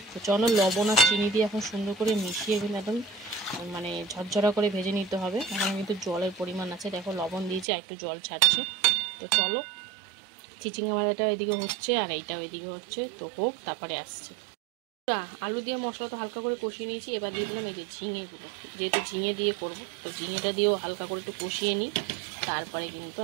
তো চলো লবণ আর চিনি দিয়ে এখন সুন্দর করে মিশিয়ে কিন্তু একদম মানে ঝরঝরা করে ভেজে নিতে হবে। এখন কিন্তু জলের পরিমাণ আছে, দেখো লবণ দিয়েছে আর একটু জল ছাড়ছে। তো চলো চিচিঙ্গা ভাজাটা ওইদিকে হচ্ছে আর এইটা ওইদিকে হচ্ছে, তো হোক তারপরে আসছে। আলু দিয়ে মশলাটা হালকা করে কষিয়ে নিয়েছি, এবার দিয়ে দিলাম এই যে ঝিঙেগুলো, যেহেতু ঝিঙে দিয়ে করবো তো ঝিঙেটা দিয়েও হালকা করে একটু কষিয়ে নিই। তারপরে কিন্তু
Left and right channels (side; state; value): left; drops out; at 7.7 s